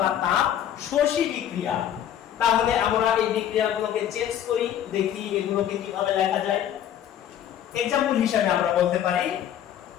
তাপ শোষী বিক্রিয়া। তাহলে আমরা এই বিক্রিয়াগুলোকে চেঞ্জ করি, দেখি এগুলোকে কিভাবে লেখা যায়। এক্সাম্পল হিসেবে আমরা বলতে পারি,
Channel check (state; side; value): quieter; right; 10.4 dB